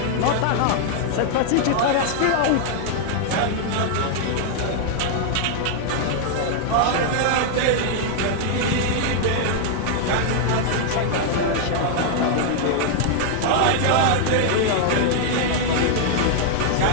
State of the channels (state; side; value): different; both; correlation 0.00